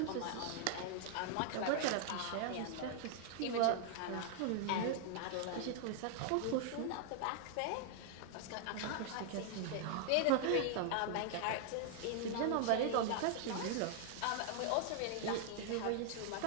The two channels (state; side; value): different; both; correlation 0.00